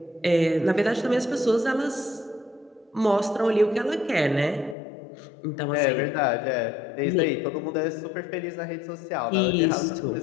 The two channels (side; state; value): right; drops out; at 4.8 s